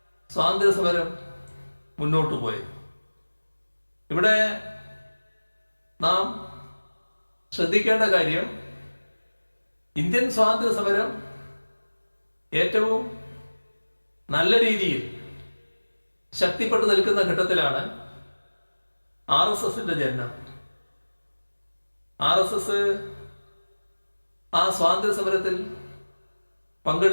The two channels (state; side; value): inverted; both; correlation -1.00